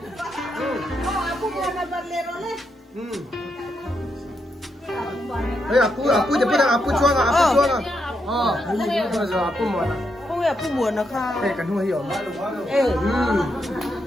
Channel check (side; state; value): both; normal; correlation 0.81